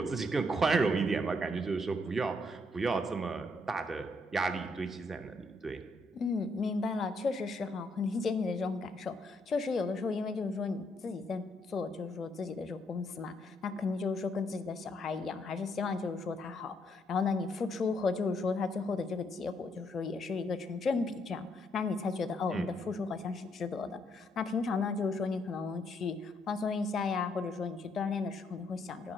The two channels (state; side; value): normal; both; correlation 0.73